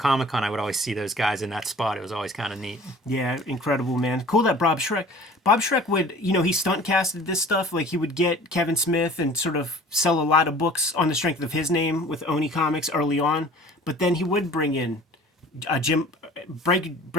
I would always see those guys in that spot. It was always kind of neat. Yeah, incredible, man. Cool that Bob Schreck would, he stunt casted this stuff. Like, he would get Kevin Smith and sort of sell a lot of books on the strength of his name with Oni Comics early on. But then he would bring in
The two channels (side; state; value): both; normal; correlation 0.46